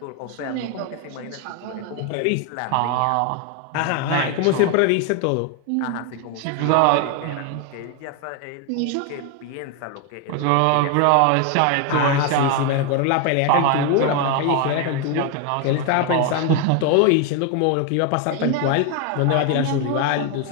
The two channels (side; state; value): both; different; correlation 0.01